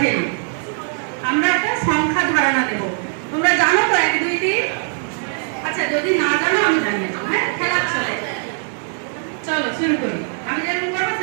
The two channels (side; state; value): left; silent; 56 dB below the other